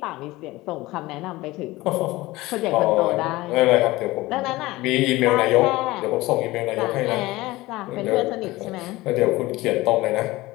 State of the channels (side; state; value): right; quieter; 19.4 dB